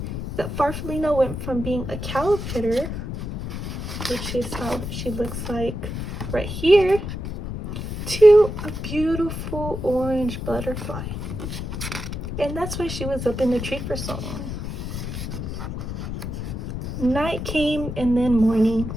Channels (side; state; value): left; noise; rumble, 6 dB below the sound